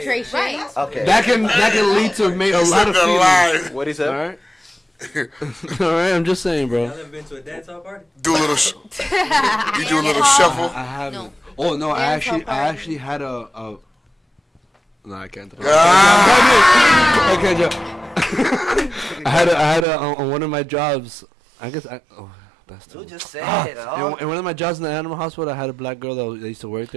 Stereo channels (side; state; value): left; drops out; at 19.9 s